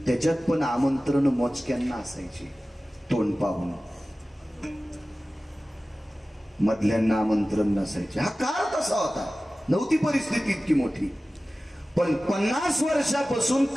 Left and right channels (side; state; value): both; normal; correlation 0.96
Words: त्याच्यात पण आमंत्रण मोजक्यांना असायची, तोंड पाहून. मधल्यांना आमंत्रण नसायचे. हा काळ तसा होता, नव्हती परिस्थिती इतकी मोठी. पण 50 वर्षापासून